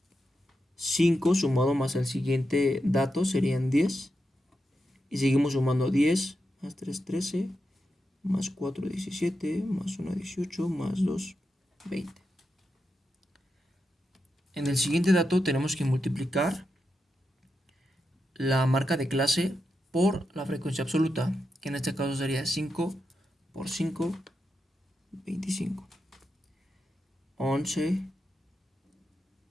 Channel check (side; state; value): both; normal; correlation 0.87